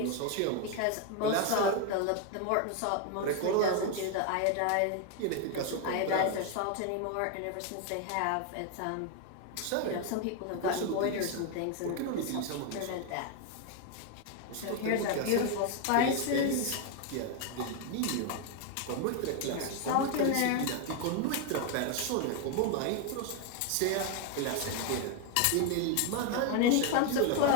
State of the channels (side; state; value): both; different; correlation 0.01